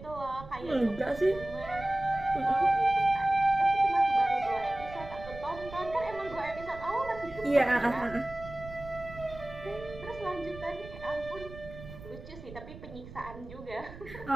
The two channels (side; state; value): right; noise; rumble, 15 dB below the sound